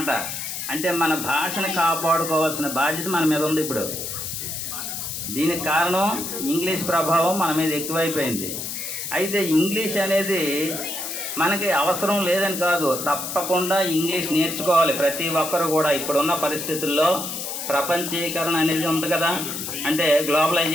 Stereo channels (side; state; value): left; noise; hiss, 5 dB below the sound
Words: అంటే మన భాషను కాపాడుకోవాల్సిన బాధ్యత మన మీద ఉంది ఇప్పుడు. దీనికి కారణం ఇంగ్లీష్ ప్రభావం మన మీద ఎక్కువైపోయింది. అయితే ఇంగ్లీష్ అనేది మనకి అవసరం లేదని కాదు, తప్పకుండా ఇంగ్లీష్ నేర్చుకోవాలి ప్రతి ఒక్కరు కూడా. ఇప్పుడున్న పరిస్థితుల్లో ప్రపంచీకరణ అనేది ఉంది కదా, అంటే